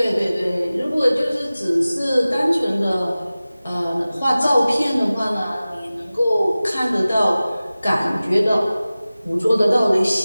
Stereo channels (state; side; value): inverted; both; correlation -0.97